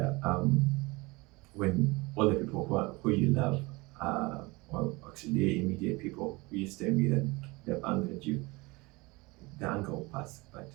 when all the people who you love, well, actually the immediate people who you stay with and they've angered you, the anger will pass. But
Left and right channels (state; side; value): quieter; left; 24.0 dB